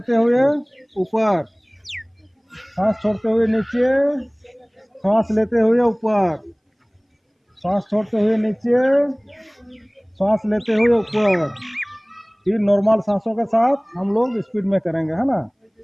हुए ऊपर, सांस छोड़ते हुए नीचे, सांस लेते हुए ऊपर, सांस छोड़ते हुए नीचे, सांस लेते हुए ऊपर। फिर नॉर्मल सांसों के साथ हम लोग स्पीड में करेंगे, है ना।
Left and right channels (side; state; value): both; identical; correlation 1.00